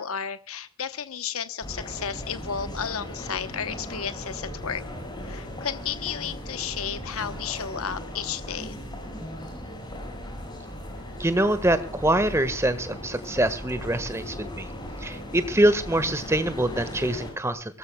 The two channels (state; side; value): normal; both; correlation 0.56